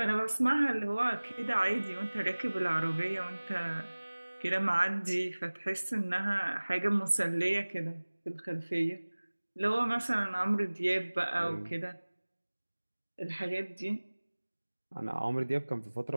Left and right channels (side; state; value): both; inverted; correlation -1.00